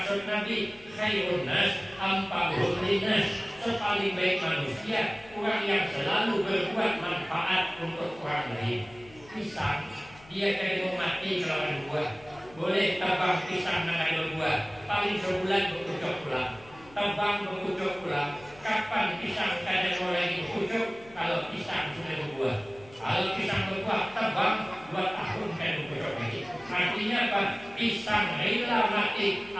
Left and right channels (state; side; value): noise; left; hum, 23 dB below the sound